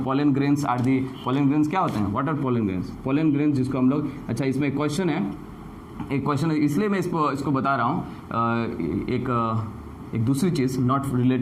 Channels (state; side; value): identical; both; correlation 1.00